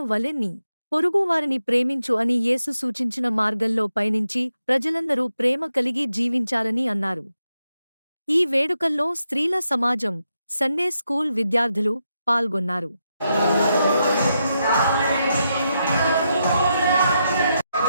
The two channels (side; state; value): both; inverted; correlation -0.84